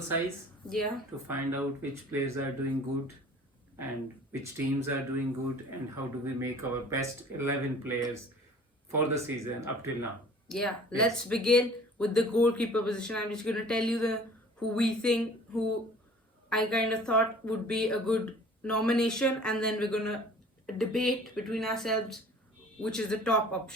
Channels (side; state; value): both; normal; correlation 0.49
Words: size Yeah. to find out which players are doing good and which teams are doing good and how do we make our best 11 players for the season up till now. Yeah, let's begin with the goalkeeper position. I'm just gonna tell you the who I kind of thought would be a good nomination, and then we're gonna debate between ourselves which is the top